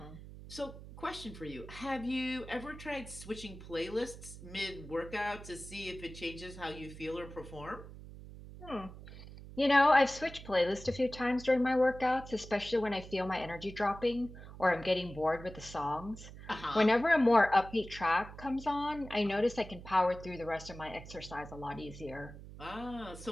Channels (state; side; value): noise; right; hum, 14 dB below the sound